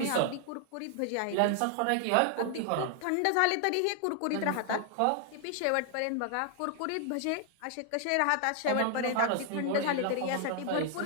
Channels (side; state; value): both; different; correlation 0.00